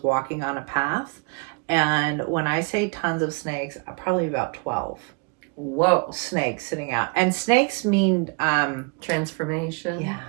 walking on a path. And when I say tons of snakes, probably about 12. Whoa. Snakes sitting out. And snakes mean... transformation. Yeah.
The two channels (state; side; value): quieter; left; 33.0 dB